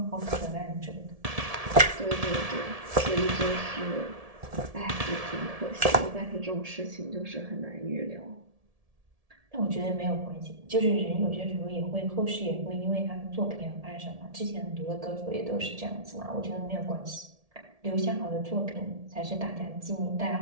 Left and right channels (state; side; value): late; left; 1.7 ms